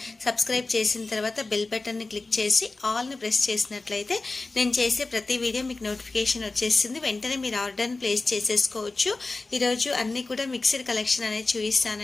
సబ్స్క్రైబ్ చేసిన తర్వాత బెల్ బటన్ని క్లిక్ చేసి ఆల్ని ప్రెస్ చేసినట్లయితే నేను చేసే ప్రతి వీడియో మీకు నోటిఫికేషన్ వచ్చేస్తుంది. వెంటనే మీరు ఆర్డర్ని ప్లేస్ చేసేసుకోవచ్చు. ఈరోజు అన్నీ కూడా మిక్స్డ్ కలెక్షన్ అనేది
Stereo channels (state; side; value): quieter; right; 3.4 dB